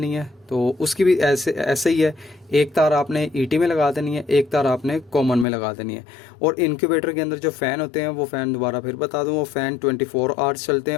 है, तो उसकी भी ऐसे ही है। एक तार आपने ईटी में लगा देनी है, एक तार आपने कॉमन में लगा देनी है। और इनक्यूबेटर के अंदर जो फ़ैन होते हैं, वो फ़ैन दोबारा फिर बता दूँ, वो फ़ैन 24 आवर्स चलते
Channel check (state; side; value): drops out; right; at 5.5 s